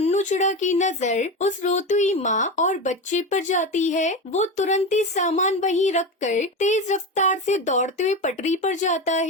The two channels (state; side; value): normal; both; correlation 0.21